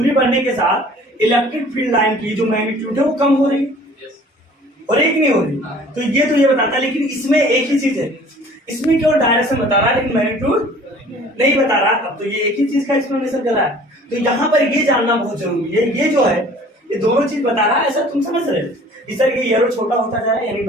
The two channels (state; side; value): normal; both; correlation 0.50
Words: के साथ इलेक्ट्रिक फील्ड लाइन की जो मैग्नीट्यूड है वो कम हो रही और एक नहीं हो रही। तो ये बताता है, लेकिन इसमें एक ही चीज है, इसमें केवल डायरेक्शन बता रहा है लेकिन मैग्नीट्यूड नहीं बता रहा। अब तो ये एक ही चीज का एक्सप्लेनेशन कर रहा है, तो यहाँ पर ये जानना बहुत जरूरी है। ये जो है ये दोनों चीज बता रहा है, ऐसा तुम समझ रहे हो, इस तरह ये एरो छोटा होता जा रहा है यानी